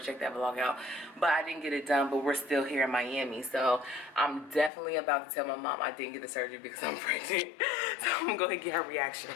that vlog out. But I didn't get it done, but we're still here in Miami. So I'm definitely about to tell my mom I didn't get the surgery because I'm pregnant. So I'm going to go ahead and get her reaction.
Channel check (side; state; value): right; drops out; at 4.7 s